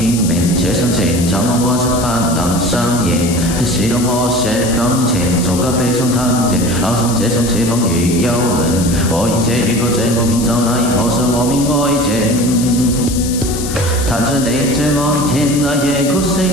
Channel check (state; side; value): noise; left; hiss, 8 dB below the sound